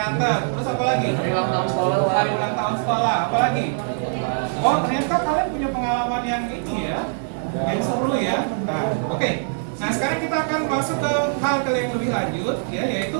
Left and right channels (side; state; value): left; silent; digital silence